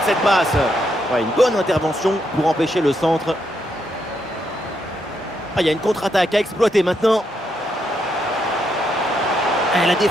cette passe. Ouais, une bonne intervention pour empêcher le centre. Il y a une contre-attaque à exploiter maintenant. La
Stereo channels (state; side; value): normal; both; correlation 0.78